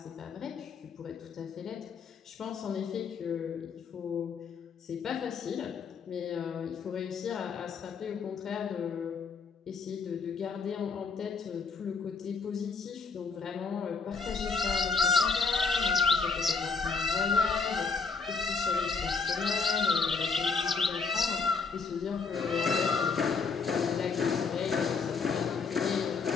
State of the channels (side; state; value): right; quieter; 5.0 dB